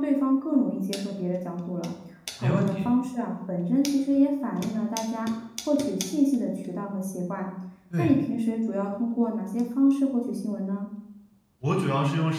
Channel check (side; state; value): both; identical; correlation 1.00